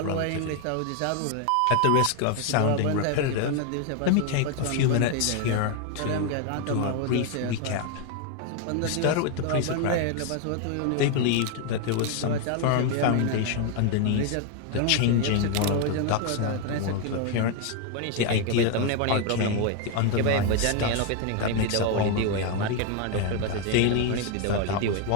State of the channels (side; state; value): both; different; correlation 0.01